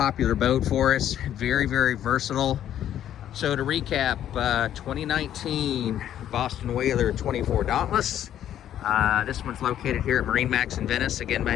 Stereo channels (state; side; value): quieter; right; 11.0 dB